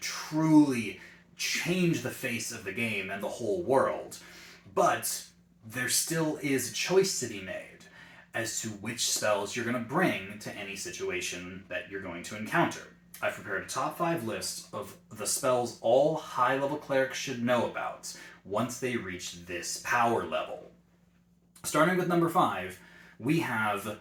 truly change the face of the game and the whole world. But there still is a choice to be made as to which spells you're going to bring to any situation that you're going to encounter. I've prepared a top 5 list of the spells all high-level clerics should know about once they reach this power level. Starting with number 5, we have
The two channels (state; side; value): identical; both; correlation 1.00